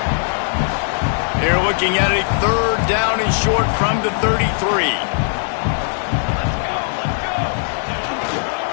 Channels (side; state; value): right; silent; digital silence